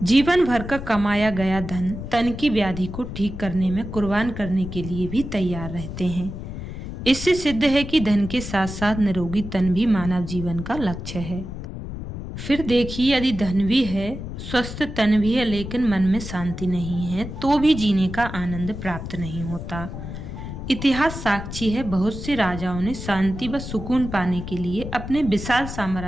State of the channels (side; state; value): left; noise; rumble, 8 dB below the sound